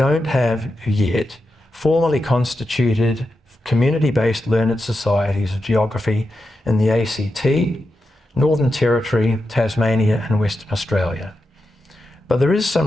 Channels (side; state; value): both; normal; correlation 0.88